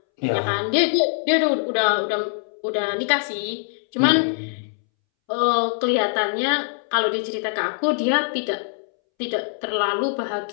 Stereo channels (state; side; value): silent; right; 64 dB below the other